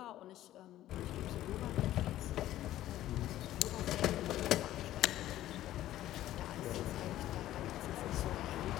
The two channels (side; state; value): right; quieter; 13.8 dB